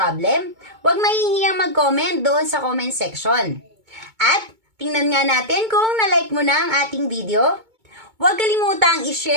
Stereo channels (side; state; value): left; late; 2.2 ms